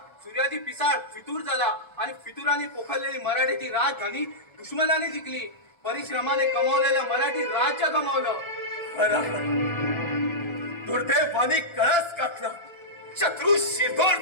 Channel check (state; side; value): late; right; 1.3 ms